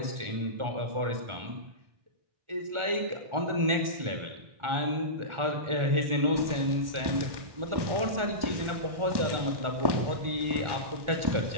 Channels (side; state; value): left; late; 1.4 ms